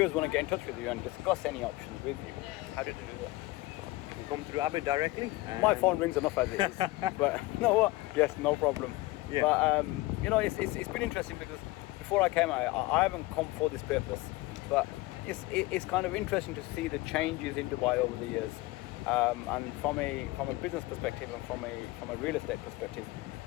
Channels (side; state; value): right; quieter; 19.9 dB